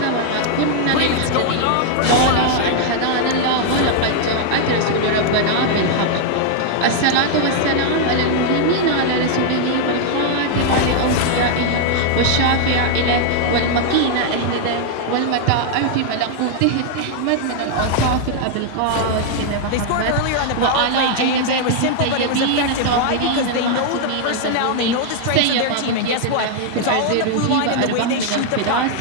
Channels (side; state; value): both; different; correlation 0.00